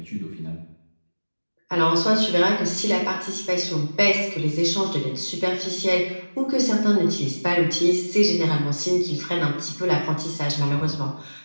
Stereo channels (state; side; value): inverted; both; correlation -1.00